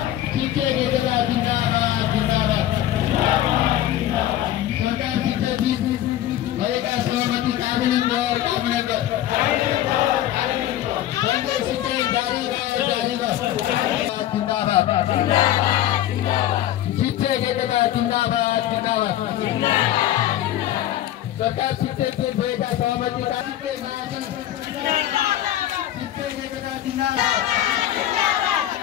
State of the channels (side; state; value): right; quieter; 12.7 dB